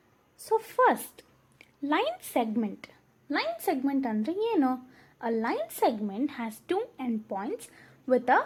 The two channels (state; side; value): identical; both; correlation 1.00